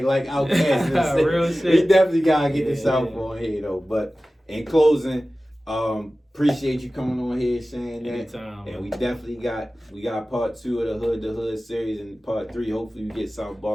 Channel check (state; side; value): normal; both; correlation 0.96